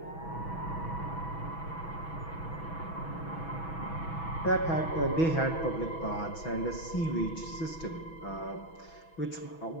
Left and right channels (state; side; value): late; right; 6.1 ms